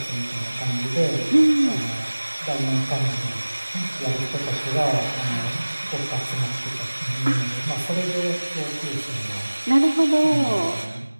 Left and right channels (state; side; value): inverted; both; correlation -1.00